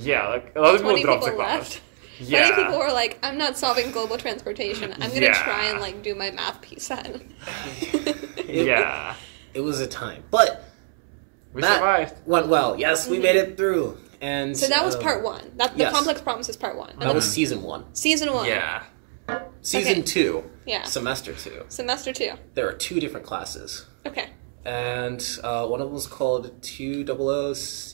like, a lot of people 20 dropped the people class. left. Yeah. 20 people were like, I'm not solving global transportation. I'm going to try and, like, do my math piece then. It was a time. But... We survived. Went well. Yes, we made it through. And so that was part one. The Complex Promise is part one. That was season 1. Season 1. Yeah. Season 2. Yeah. Semester 2. Semester 2. There are 2 different classes. Okay. And one of them was called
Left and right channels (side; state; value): left; silent; 62 dB below the other